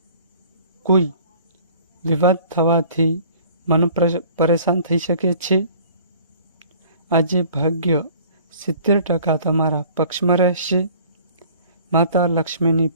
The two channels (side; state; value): both; inverted; correlation -0.50